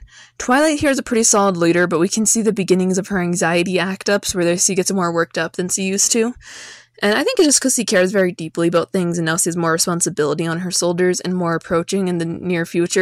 Twilight here is a pretty solid leader, but we can see the beginnings of her anxiety act-ups where she gets more worked up than she used to. And I think it's just because she cares very deeply about things and now she has more responsibility on her shoulders and more approaching in the near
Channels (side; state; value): both; identical; correlation 1.00